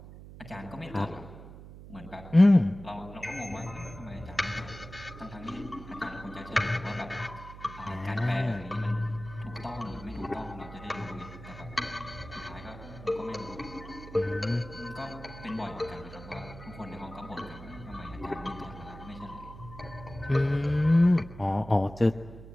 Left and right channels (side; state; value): right; noise; hum, 15 dB below the sound